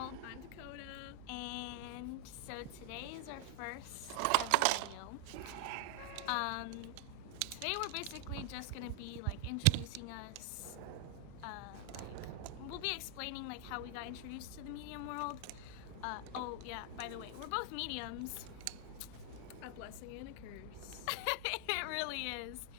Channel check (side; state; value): both; different; correlation 0.00